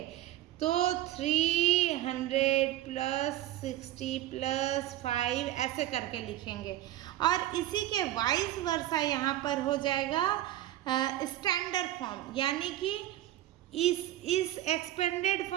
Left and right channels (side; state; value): left; quieter; 14.0 dB